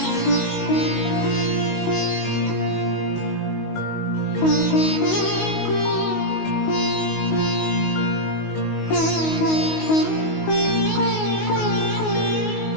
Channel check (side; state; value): right; late; 19 ms